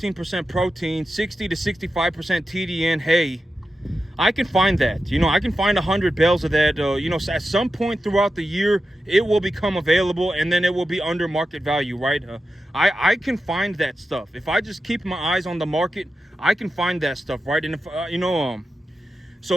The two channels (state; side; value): normal; both; correlation 0.91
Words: protein, 60 to 65% TDN hay. I can find that, you know, I can find 100 bales of that, you know, at some point throughout the year, it will become available and then it will be under market value, right? I can find that stuff. If I just keep my eyes on the market, I can find that stuff, right? And if, you know, so